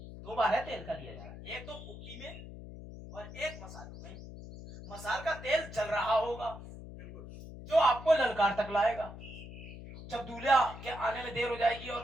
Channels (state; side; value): noise; left; hum, 13 dB below the sound